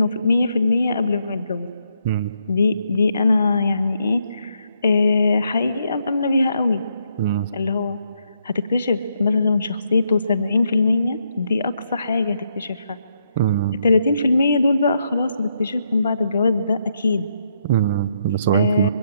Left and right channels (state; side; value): inverted; both; correlation -0.77